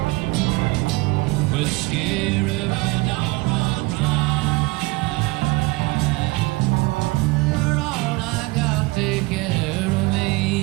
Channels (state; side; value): quieter; left; 23.2 dB